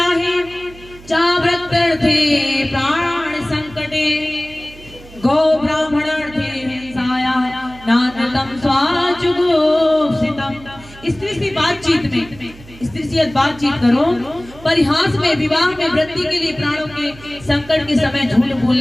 चाव्रत्यर्थे प्राण संकटे गौ ब्राह्मणार्थे हिंसाया नानतम स्वाचुगोप्सितम। स्त्री से बातचीत में, स्त्री से बातचीत करो, परिहास में, विवाह में, वृद्धि के लिए, प्राणों के संकट के समय झूठ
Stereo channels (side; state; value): right; noise; hum, 20 dB below the sound